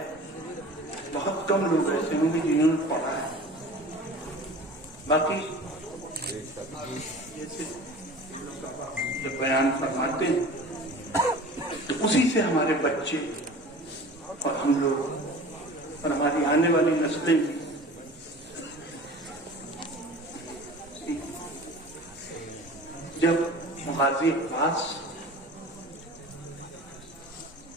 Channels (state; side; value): normal; both; correlation 0.40